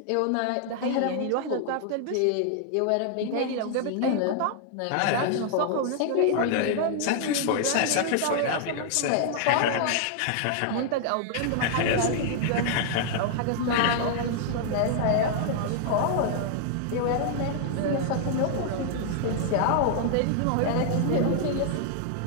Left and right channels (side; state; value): both; different; correlation -0.01